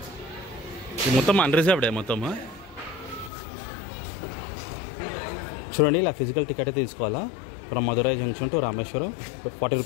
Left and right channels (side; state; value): right; drops out; at 3.3 s